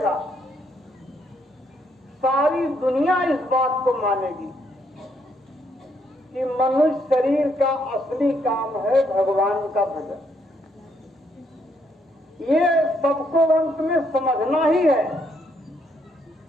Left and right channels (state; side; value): normal; both; correlation 0.73